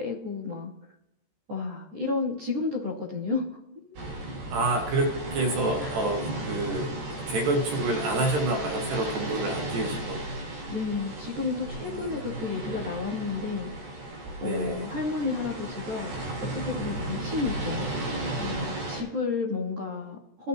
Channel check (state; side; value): late; left; 14 ms